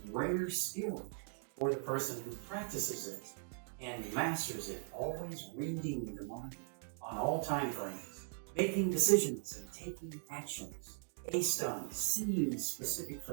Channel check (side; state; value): left; silent; 51 dB below the other